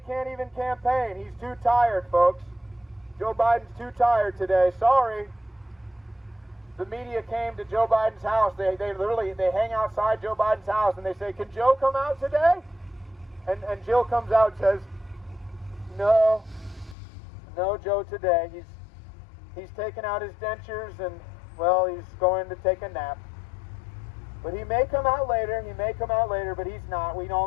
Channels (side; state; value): right; drops out; at 16.9 s